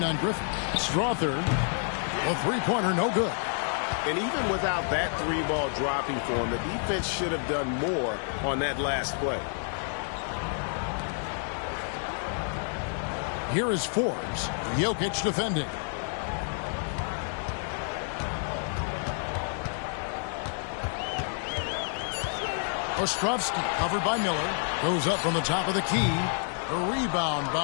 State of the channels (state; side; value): silent; right; 56 dB below the other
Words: on Griffin. Strother, a three-pointer, no good. And even without that 3-ball dropping for him, the defense should have done more on that last play. Here is Forbes. Jokic defending. Ostrovsky covered by Miller. Goes up from the top of the key. A rebound